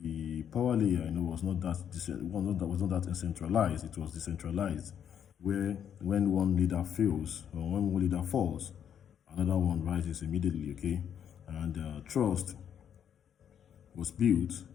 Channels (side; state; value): right; quieter; 8.8 dB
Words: power layer, was not that centralized. It was decentralized, where when one leader fails or when one leader falls, another one rises immediately, okay? And trust was built